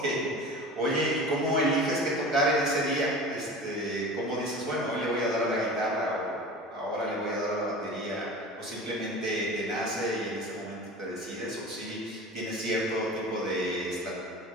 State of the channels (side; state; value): both; normal; correlation 0.36